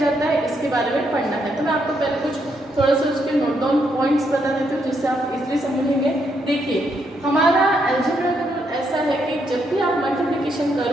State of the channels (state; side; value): normal; both; correlation 0.77